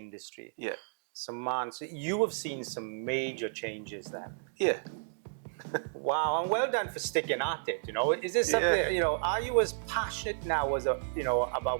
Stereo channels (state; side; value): silent; left; digital silence